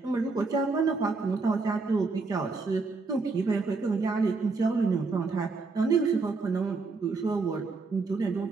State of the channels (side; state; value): left; quieter; 4.1 dB